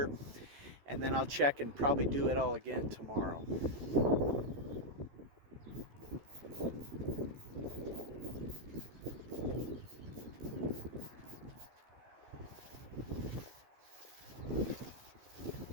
and then I'll check and probably do it all again tomorrow.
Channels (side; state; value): left; late; 14 ms